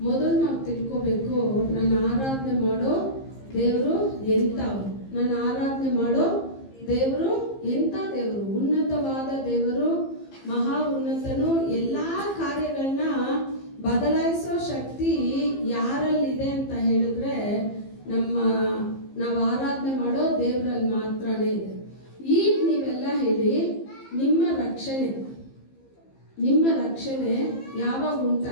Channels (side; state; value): right; late; 15 ms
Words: ಮೊದಲು ನಾವು ತಿಳ್ಕೋಬೇಕು, ನನ್ನ ಆರಾಧನೆ ಮಾಡೋ ದೇವರು ಎಂಥವ್ರು. ನನ್ನ ಆರಾಧನೆ ಮಾಡೋ ದೇವರು ಎಂಥ ದೇವರು? ಉನ್ನತವಾದ ದೇವರು, ಮಹಾ ಉನ್ನತನು. ಎಲ್ಲ ಕಾರ್ಯಗಳನ್ನ ಬದಲಾಯಿಸೋ ಶಕ್ತಿ ಯಾರಲ್ಲಿದೆ ಅಂತ ಹೇಳಿದ್ರೆ ನಾವು ಆರಾಧನೆ ಮಾಡೋ ದೇವರಲ್ಲಿ ಮಾತ್ರನೇ ಇದೆ. ಈಗ ನೀವೆಲ್ಲ ಹೇಳಿ, ನಿಮ್ಮ ರಕ್ಷಣೆ ಯಾವಾಗ